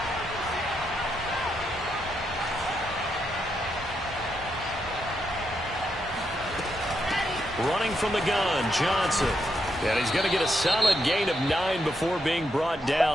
Running from the gun, Johnson. And he's going to get a solid gain of 9 before being brought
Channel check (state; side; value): normal; both; correlation 0.81